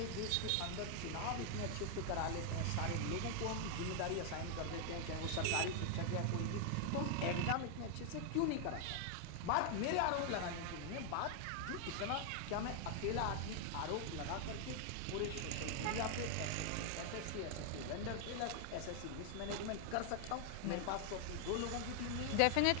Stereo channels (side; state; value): both; different; correlation 0.00